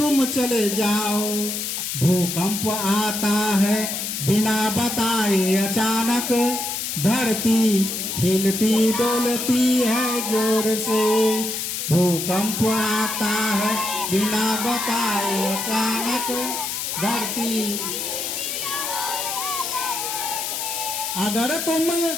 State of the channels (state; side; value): noise; left; hiss, 3 dB below the sound